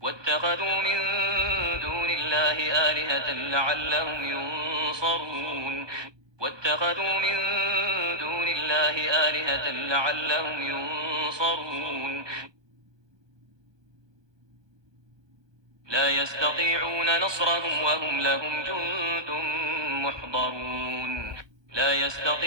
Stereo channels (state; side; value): late; left; 1.2 ms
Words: واتخذوا من دون الله آلهة لعلهم ينصرون واتخذوا من دون الله آلهة لعلهم ينصرون لا يستطيعون نصرهم وهم لهم جند محضرون لا